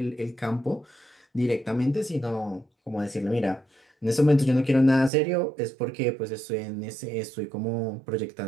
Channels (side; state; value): left; drops out; at 5.1 s